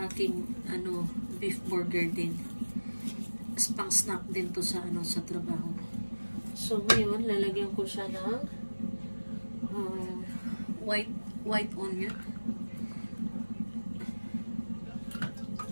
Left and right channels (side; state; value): both; inverted; correlation -1.00